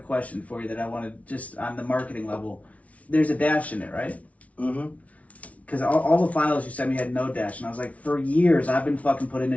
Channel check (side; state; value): right; late; 0.067 ms